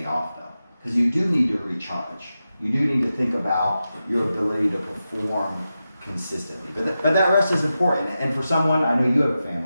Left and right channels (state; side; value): inverted; both; correlation -0.91